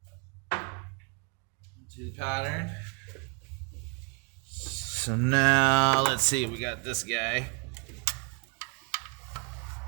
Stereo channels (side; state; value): left; quieter; 35.5 dB